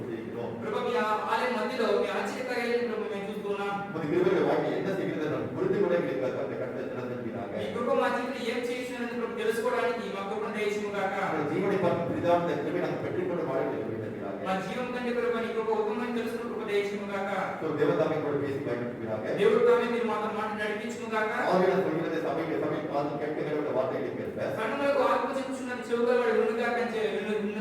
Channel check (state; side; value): identical; both; correlation 1.00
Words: கொண்டிருக்கிறோம். ప్రభు మీ ఆలయం మధ్యలో మీ ఆశ్చర్యకార్యాలను ప్రభు మేము చూస్తున్నాం. உமது கிருபையுடைய வாழ்க்கை என்ன செய்கிறது என்று புரிந்து கொள்ள எங்களுக்கு அந்த கண்ணை திறந்திருக்கிறாங்க. ఈ కృప మా జీవితంలో ఏం చేస్తున్నదని ప్రభు తెలుసుకోవడానికి మా కృపను దయచేయము గాక. நம்முடைய ஜீவனை பார்க்கும் பெரிதான இந்த கிருபை நாங்கள் பெற்றுக்கொண்டு வாழ எங்களுக்கு இருக்கிறாங்க. మా జీవం కంటే ప్రభు నీ కృప ఉత్తమని తెలుసుకున్న కృప దయచేయము గాక. தேவதாமை கூட பேசி பயன்படுத்துகிறாங்க. దేవుడు తామే మీరు మాతో మాట నడిపించుము గాక. ஆவியான சொல்கிறது சபையில் காது கேட்கிற வார்த்தைகளை கேட்ப సంఘములకు ఆత్మ చెప్పుచున్నది చెవుగా వాడు వినుగాక విన్న